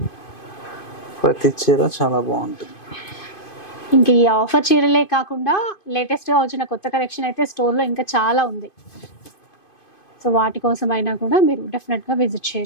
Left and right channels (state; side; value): late; right; 2.5 ms